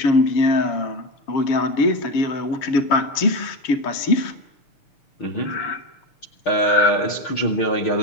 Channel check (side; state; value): right; late; 6.6 ms